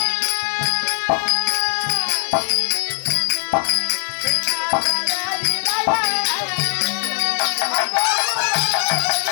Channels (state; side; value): silent; right; 66 dB below the other